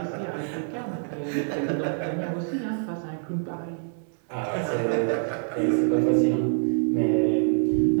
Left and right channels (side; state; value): left; silent; digital silence